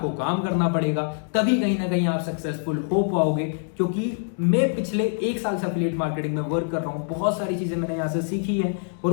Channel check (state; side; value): silent; right; 60 dB below the other